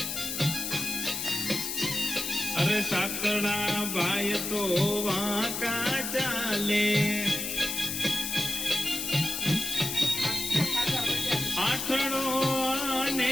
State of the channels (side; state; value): left; noise; hiss, 3 dB below the sound